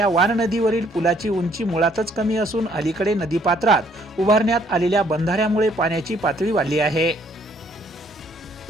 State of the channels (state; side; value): normal; both; correlation 0.65